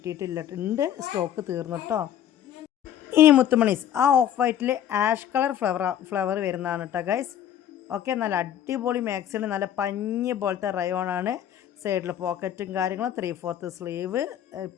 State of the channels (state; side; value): quieter; right; 10.4 dB